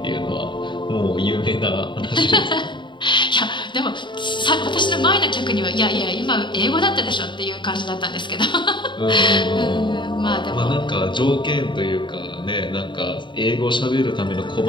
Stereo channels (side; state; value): right; late; 0.23 ms